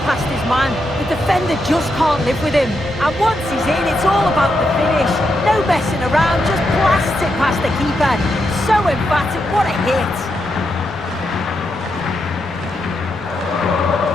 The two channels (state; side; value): normal; both; correlation 0.83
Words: past his man. The defender just can't live with him. And once he's in, it's all about the finish. No messing around, just blasts it past the keeper. So emphatic, what a hit.